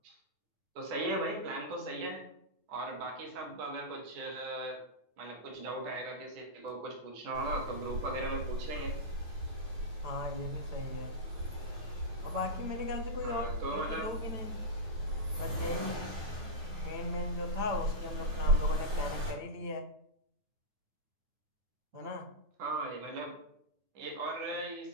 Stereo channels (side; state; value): left; late; 9.3 ms